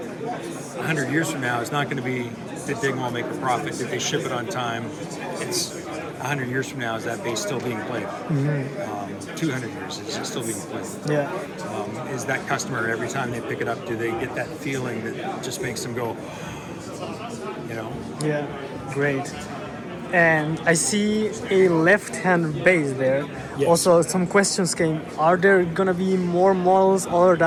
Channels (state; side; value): identical; both; correlation 1.00